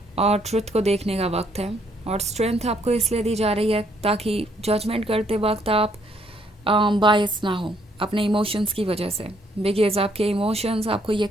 और ट्रुथ को देखने का वक्त है, और स्ट्रेंथ आपको इसलिए दी जा रही है ताकि जजमेंट करते वक्त आप बायस ना हो अपने इमोशंस की वजह से, बिकॉज आपके इमोशंस आपको ये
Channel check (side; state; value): both; normal; correlation 0.69